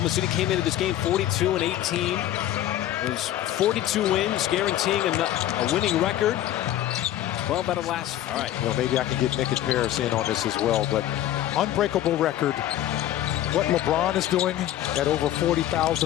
City came into this game 42-18. It was 42 wins, guaranteeing a winning record. 12 out of last. All right. Well, maybe I can get Nick and Paris in on this as well, but unbreakable record. What LeBron is doing at over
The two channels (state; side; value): quieter; right; 12.7 dB